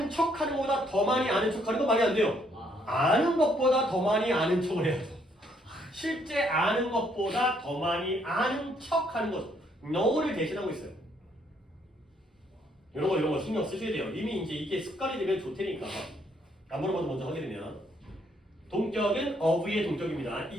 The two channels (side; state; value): both; normal; correlation 0.69